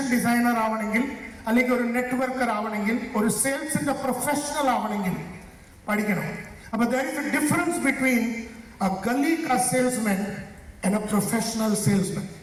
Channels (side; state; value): both; identical; correlation 1.00